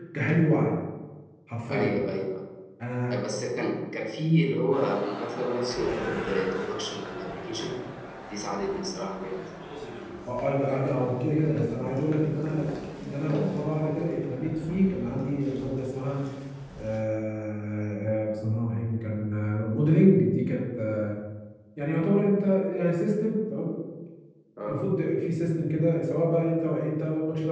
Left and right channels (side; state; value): both; identical; correlation 1.00